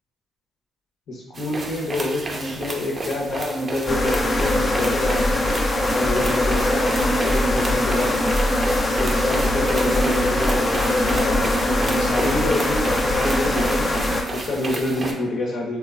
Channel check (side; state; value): both; normal; correlation 0.84